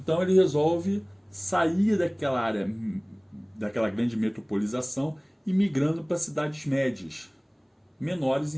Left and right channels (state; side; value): identical; both; correlation 1.00